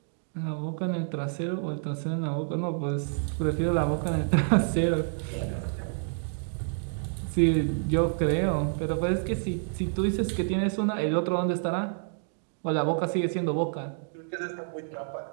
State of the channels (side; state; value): left; silent; digital silence